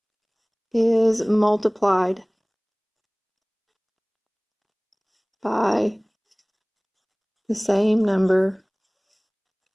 is multiplied by the same number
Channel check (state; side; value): identical; both; correlation 1.00